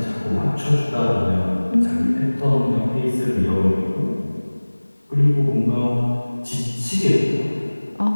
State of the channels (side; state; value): both; inverted; correlation -1.00